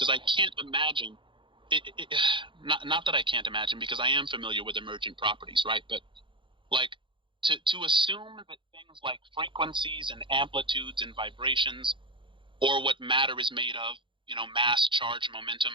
I can't imagine, not that I can't imagine, because I am familiar with emergent properties, right? But to assume that things like frequencies and amplitudes and vibrations, or what matter is made of, mass, charge,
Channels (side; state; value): left; late; 0.24 ms